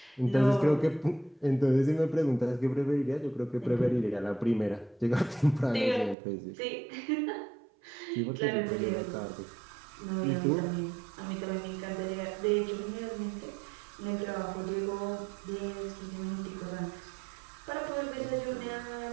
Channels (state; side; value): drops out; left; at 6.2 s